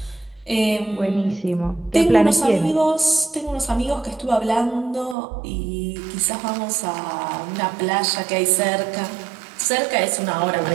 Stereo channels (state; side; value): drops out; left; at 5.2 s